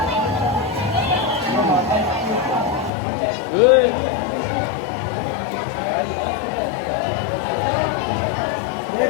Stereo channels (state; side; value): drops out; right; at 2.9 s